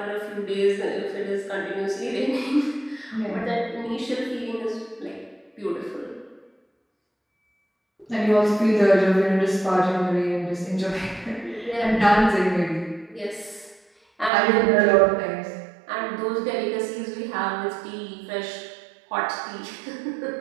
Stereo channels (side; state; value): left; drops out; at 14.3 s